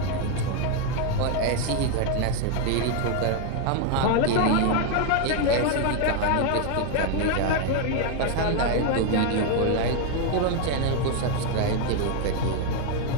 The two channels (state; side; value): different; both; correlation 0.01